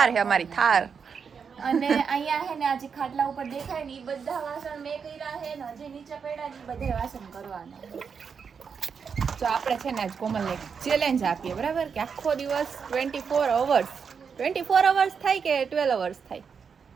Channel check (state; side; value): quieter; left; 6.2 dB